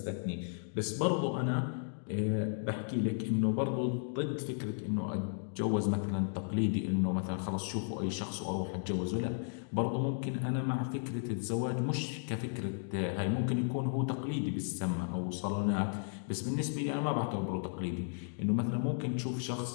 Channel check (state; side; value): silent; right; digital silence